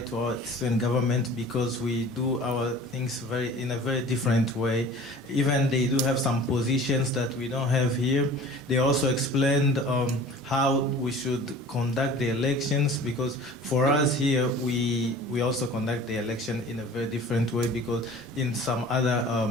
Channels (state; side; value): normal; both; correlation 0.44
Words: our student government because we do our things in a very different way. Even they do have some positions that we don't have here. They also explained how we should conduct the elections, because for us here, we also conduct the election in a very different way, because in some other